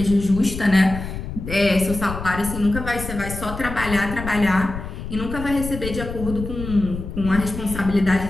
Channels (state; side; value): noise; left; rumble, 8 dB below the sound